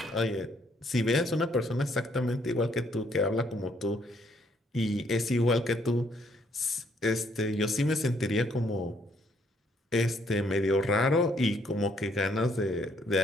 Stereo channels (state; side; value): normal; both; correlation 0.68